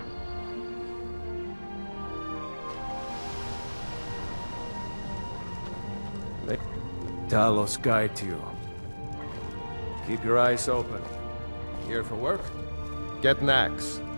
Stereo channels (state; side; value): inverted; both; correlation -1.00